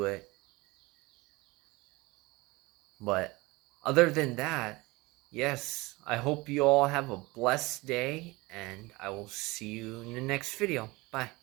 it. But other than that, yes, I hope you all have a blessed day, and I will see you in the next video. Bye.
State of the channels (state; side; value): quieter; left; 22.7 dB